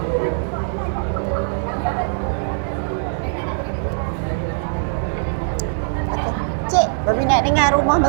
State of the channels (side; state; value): left; silent; digital silence